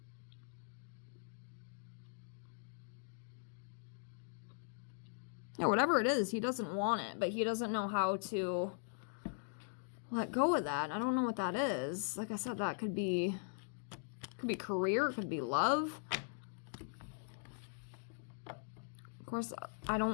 Yeah, whatever it is, he doesn't want it, but he doesn't know how to let go of that. I don't know what that is. Like I said, that could be career, it could be love. Of course, I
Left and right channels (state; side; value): silent; right; digital silence